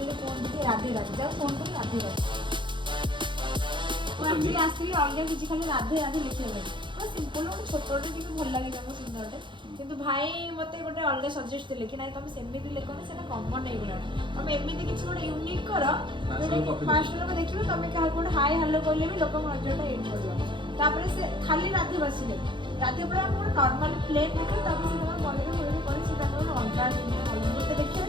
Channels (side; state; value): left; late; 0.23 ms